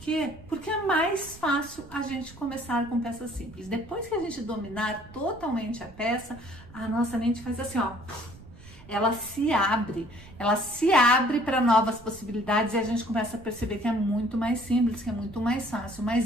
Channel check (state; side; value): noise; right; rumble, 19 dB below the sound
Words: Porque é mais fácil a gente começar com peças simples. Depois que a gente dominar totalmente a peça, a nossa mente faz assim, ó... ela se abre para novas possibilidades e a gente começa a perceber que é muito mais simples, que é muito mais fácil.